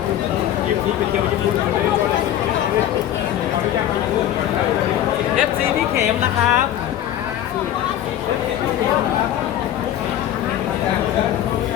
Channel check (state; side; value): quieter; right; 11.7 dB